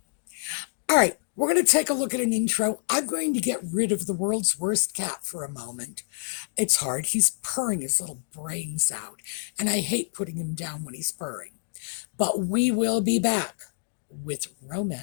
All right, we're going to take a look at an intro. I'm going to get rid of the world's worst cat for a moment. It's hard. He's purring his little brains out, and I hate putting him down when he's purring. But we will be back with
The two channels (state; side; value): silent; right; digital silence